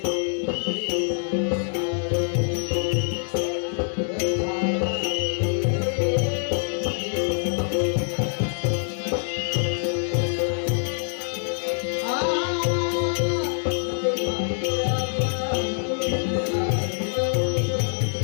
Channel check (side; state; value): right; silent; digital silence